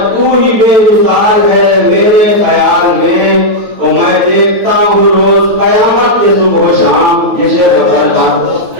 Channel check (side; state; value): left; late; 9.1 ms